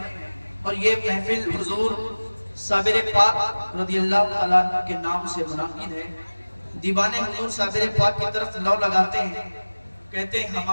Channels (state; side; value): inverted; both; correlation -1.00